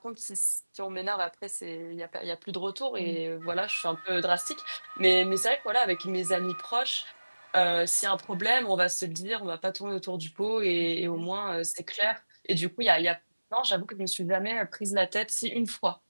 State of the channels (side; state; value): both; inverted; correlation -1.00